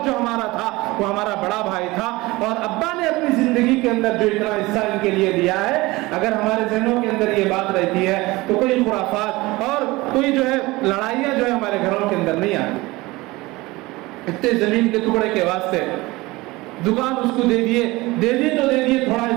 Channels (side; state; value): left; quieter; 21.1 dB